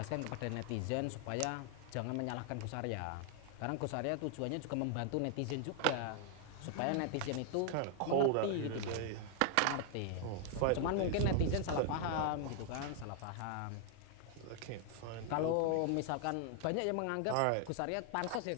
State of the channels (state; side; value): different; both; correlation 0.00